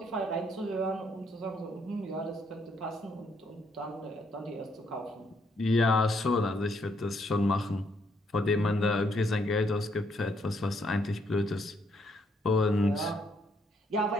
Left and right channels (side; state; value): both; normal; correlation 0.72